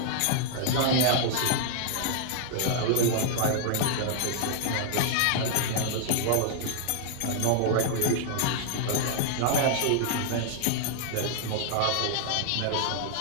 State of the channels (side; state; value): both; different; correlation -0.01